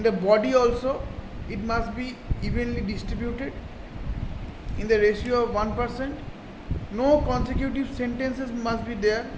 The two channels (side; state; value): both; identical; correlation 1.00